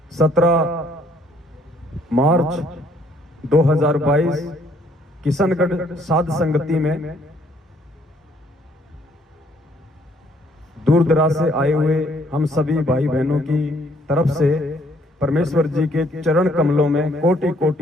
17 मार्च 2022 किशनगढ़ साध संगति में दूर दराज से आए हुए हम सभी भाई बहनों की तरफ से परमेश्वर जी के चरण कमलों में कोटि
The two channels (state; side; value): normal; both; correlation 0.65